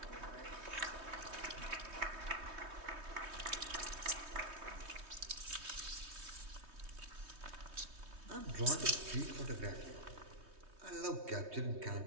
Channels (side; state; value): left; late; 3.2 ms